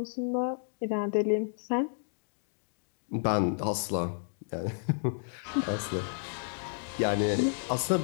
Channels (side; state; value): right; silent; digital silence